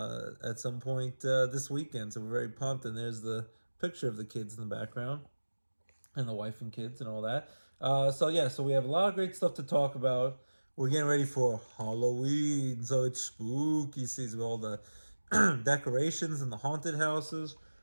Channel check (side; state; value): both; inverted; correlation -1.00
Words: some point this weekend. So we're very pumped, and there's the picture of the kids in the background and the wife and kids and all that. So we have a lot of great stuff to talk about. We're getting ready for Halloween, so it's spooky season with all the decorations and the haunted houses.